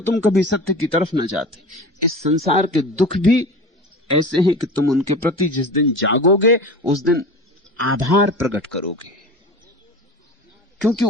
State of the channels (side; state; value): both; normal; correlation 0.34